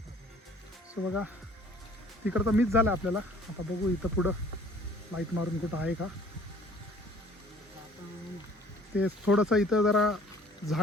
सो बघा तिकडं तर मिस झालं आपल्याला. आता बघू इथं पुढं लाईट मारून कुठं आहे का. ते थोडंसं इथं जरा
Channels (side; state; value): both; normal; correlation 0.53